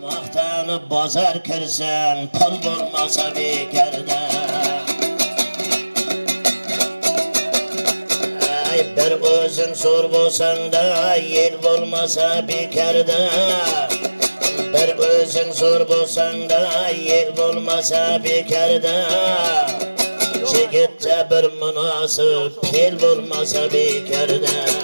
Maqtanıp bozar kirsen, pul bo'lmasa bekarda. Ay bir o'zing zo'r bo'lsang-da, yel bo'lmasa bekarda. Bir o'zing zo'r bo'lsang-da, yel bo'lmasa bekarda. Yigitda bir munosib fel bo'lmasa bekarda.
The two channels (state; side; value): inverted; both; correlation -1.00